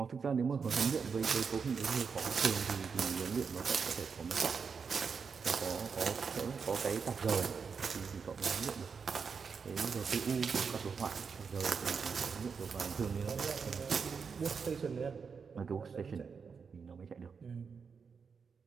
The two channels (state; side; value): quieter; left; 5.8 dB